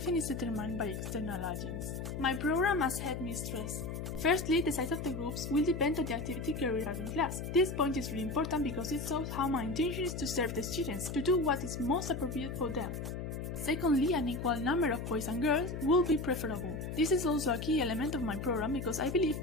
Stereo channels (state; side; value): noise; left; hum, 5 dB below the sound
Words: is determined by external agents. My program as headmistress. Firstly, the size of the groups will depend on the activity carried out in class. This point is really important because it shows how my intention is to serve the students, to do what is most appropriate for them. Secondly, an equal number of boys and girls will be preferable. This is also a key element of my program because I believe